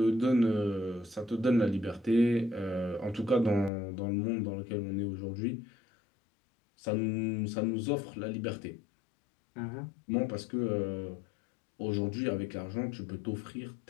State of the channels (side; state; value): right; drops out; at 3.7 s